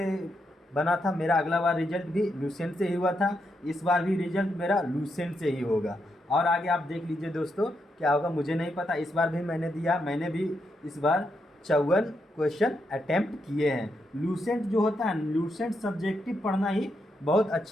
बना था, मेरा अगला बार रिजल्ट भी लूसेंट से ही हुआ था, इस बार भी रिजल्ट मेरा लूसेंट से ही होगा। और आगे आप देख लीजिए दोस्तों क्या होगा मुझे नहीं पता, इस बार भी मैंने दिया, मैंने भी इस बार 54 क्वेश्चन अटेम्प्ट किए हैं। लूसेंट जो होता है, लूसेंट सब्जेक्टिव पढ़ना ही बहुत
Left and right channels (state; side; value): normal; both; correlation 0.81